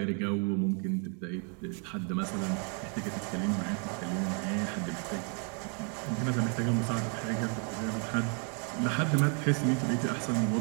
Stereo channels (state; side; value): quieter; left; 39.7 dB